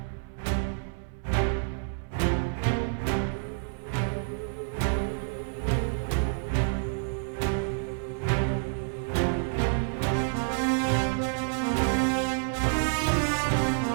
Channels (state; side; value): silent; left; 59 dB below the other